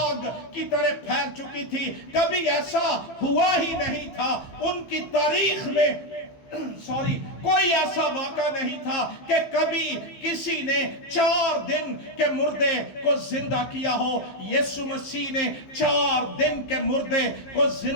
کی طرح پھیل چکی تھی۔ کبھی ایسا ہوا ہی نہیں تھا ان کی تاریخ میں، کوئی ایسا واقعہ نہیں تھا کہ کبھی کسی نے 4 دن کے مردے کو زندہ کیا ہو۔ یسوع مسیح نے 4 دن کے مردے کو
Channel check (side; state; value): right; late; 15 ms